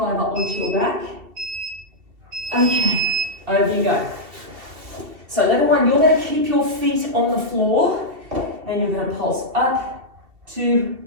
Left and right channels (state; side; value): late; left; 2.7 ms